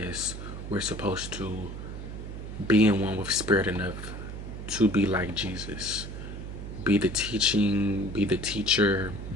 we're supposed to be in one with spirit enough to be like Jesus. Be the teaching, be the teacher,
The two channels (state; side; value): noise; right; hum, 9 dB below the sound